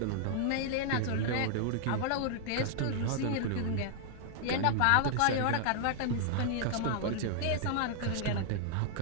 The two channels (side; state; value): both; different; correlation -0.01